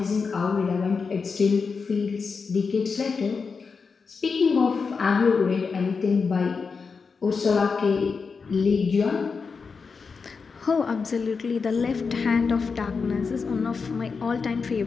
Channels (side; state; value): right; quieter; 5.1 dB